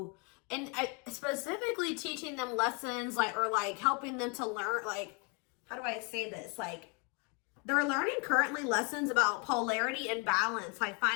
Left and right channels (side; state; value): right; quieter; 31.4 dB